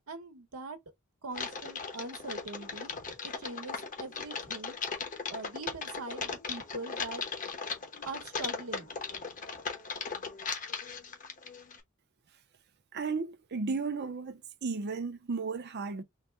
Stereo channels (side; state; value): both; normal; correlation 0.03